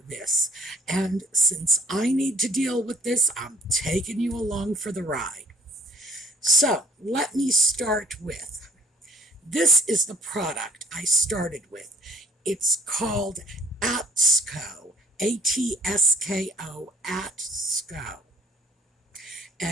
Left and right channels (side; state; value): both; normal; correlation 0.56